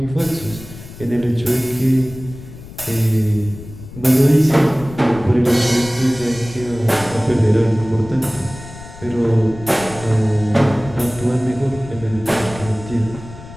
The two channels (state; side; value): noise; left; rumble, 15 dB below the sound